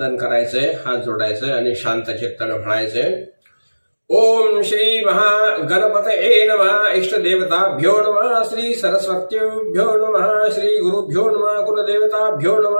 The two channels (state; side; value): inverted; both; correlation -1.00